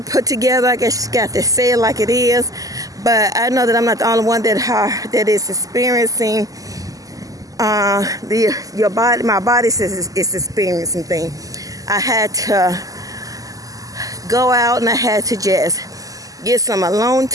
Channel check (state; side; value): late; left; 0.17 ms